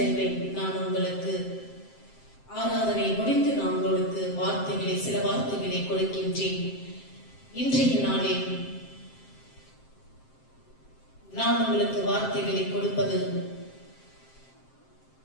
நான் உங்களுக்கு ஆராதனை முடிந்து நான் உங்களுக்கு சில வார்த்தைகளை கொடுக்கின்றேன். இன்றைய நாளில் நான் உங்களுக்கு வார்த்தைகளை கொடுப்பது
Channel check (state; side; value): late; right; 7.6 ms